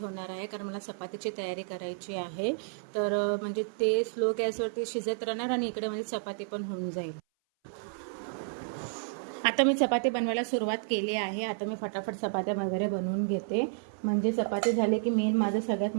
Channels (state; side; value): silent; left; 57 dB below the other